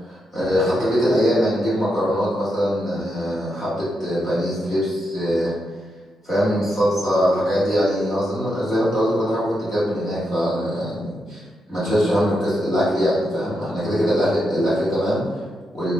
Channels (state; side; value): normal; both; correlation 0.84